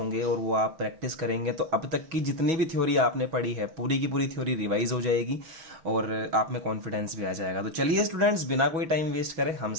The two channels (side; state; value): left; late; 6.1 ms